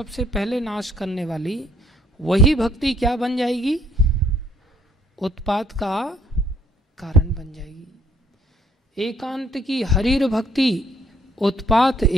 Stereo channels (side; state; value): both; normal; correlation 0.64